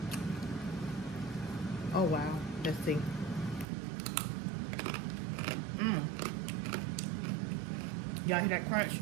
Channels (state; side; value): drops out; left; at 3.7 s